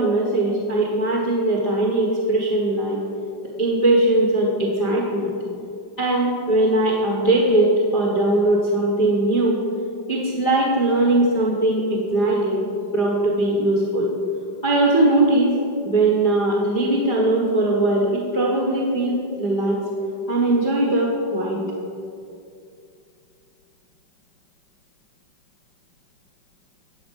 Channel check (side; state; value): right; late; 4.9 ms